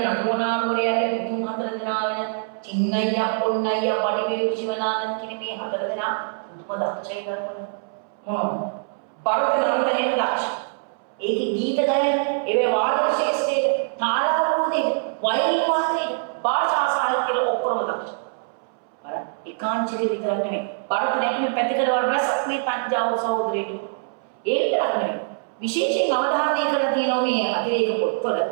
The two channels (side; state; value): left; silent; 62 dB below the other